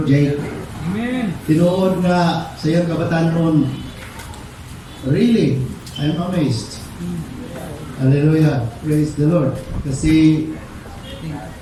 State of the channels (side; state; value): both; identical; correlation 1.00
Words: Jay. Amen. Tinuod nga sa iyang kabataan noon. Really, I'm amazed. Hallelujah. Praise the Lord. Kasi